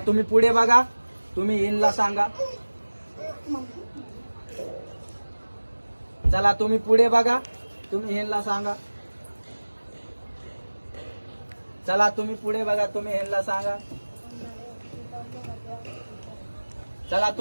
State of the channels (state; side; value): inverted; both; correlation -1.00